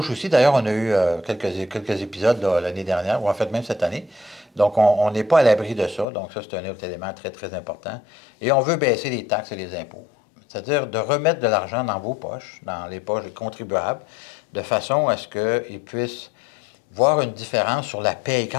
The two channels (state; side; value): drops out; right; at 6.1 s